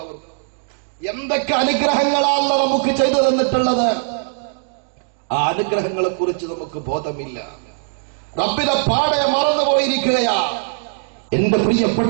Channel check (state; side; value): silent; left; digital silence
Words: ഓർക്കും. എന്തൊക്കെ അനുഗ്രഹങ്ങളാണ് നമുക്ക് ചെയ്തു തന്നിട്ടുള്ളത്. ആ അനുഗ്രഹങ്ങളെ കുറിച്ച് നമുക്ക് ബോധമില്ല. റബ്ബിനെ പാടെ മറന്നുപോയിരിക്കുകയാ. എന്റെ